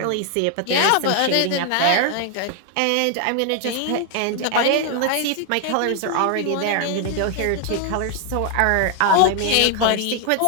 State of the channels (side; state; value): both; different; correlation 0.00